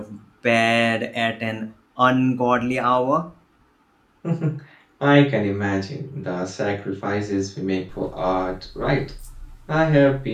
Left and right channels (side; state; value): both; identical; correlation 1.00